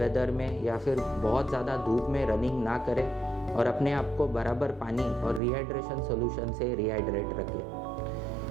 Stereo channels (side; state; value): left; drops out; at 5.4 s